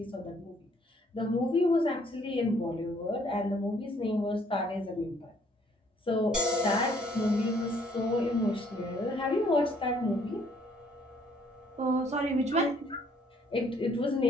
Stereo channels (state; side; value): normal; both; correlation 0.63